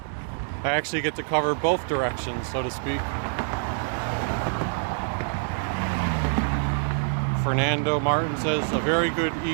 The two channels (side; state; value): left; silent; digital silence